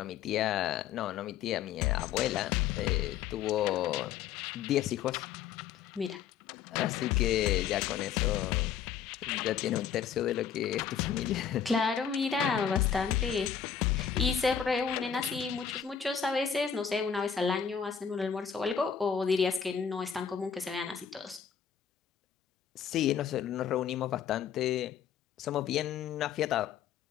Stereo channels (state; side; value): quieter; right; 8.0 dB